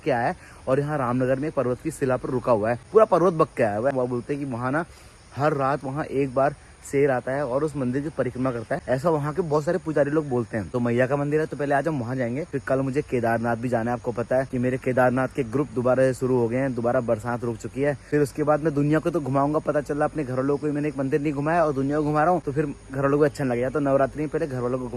आया है और यहाँ रामनगर में एक पर्वत की शिला पर रुका हुआ है। पूरा पर्वत बक के आया हुआ है। वो बोलते हैं कि वहाँ ना हर रात वहाँ एक बार शेर आता है और उस मंदिर की परिक्रमा करता है, ऐसा वहाँ के बहुत सारे पुजारी लोग बोलते हैं। तो मैया का मंदिर है, तो पहले आज हम वहाँ जाएंगे। फिर कल मुझे केदारनाथ भी जाना है। आपको पता है कि मेरे केदारनाथ के ग्रुप दोबारा से शुरू हो गए हैं, दोबारा बरसात रुक चुकी है। फिर उसके बाद मैं दुनिया को तो घुमाऊंगा, पता चला अपने घर वालों को मैंने एक मंदिर नहीं घुमाया और दुनिया को घुमा रहा हूँ, तो फिर घर वालों को अच्छा नहीं लगेगा। तो नवरात्रि में पहले घर वालों को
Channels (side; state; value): both; identical; correlation 1.00